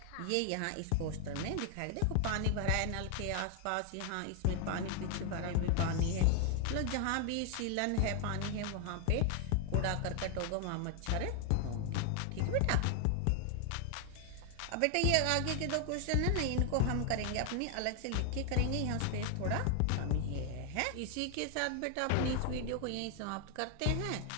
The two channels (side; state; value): both; different; correlation 0.00